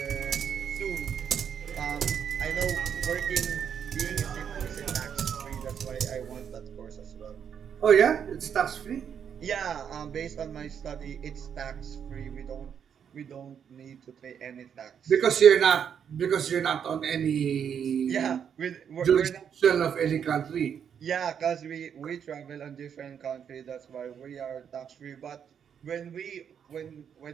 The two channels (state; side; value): quieter; left; 8.0 dB